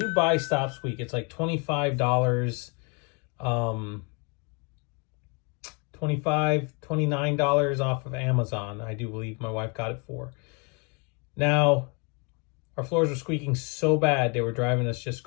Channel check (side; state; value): right; quieter; 33.3 dB